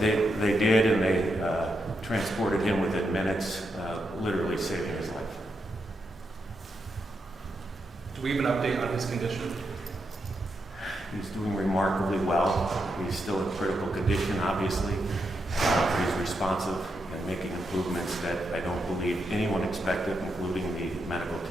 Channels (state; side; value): normal; both; correlation 0.83